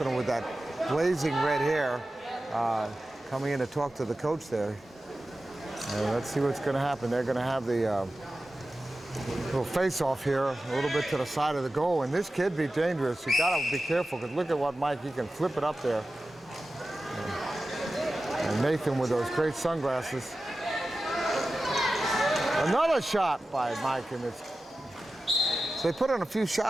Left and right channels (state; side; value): normal; both; correlation 0.94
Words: with that blazing red hair coming in to talk to the coach there. And let's see what's going to happen. They're going to have the little face-off here, a little bit to the side of the goal. And this kid be dangerous. You got to be careful, because look at what Mike, he can flip it up there. And Nathan with those great sunglasses. Another shot by Mike, and it's, so they put in a few